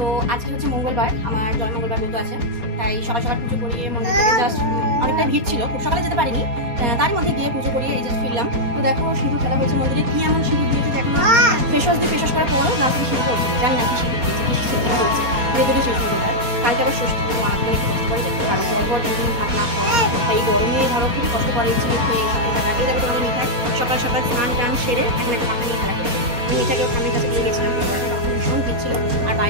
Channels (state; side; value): late; left; 4.2 ms